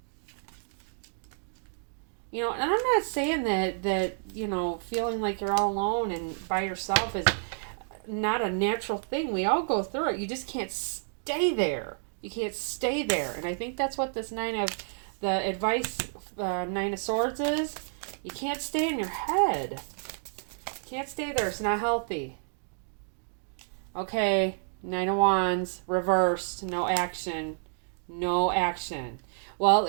And I'm not saying that feeling like you're all alone and by yourself is not a natural thing. We all go through it. You just can't stay there. And I think that's what this 9 of Swords is. You can't stay in your head. Can't stay there. It's not healthy. Okay, 9 of Wands, reversed, no action. No action. Well,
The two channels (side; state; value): left; silent; digital silence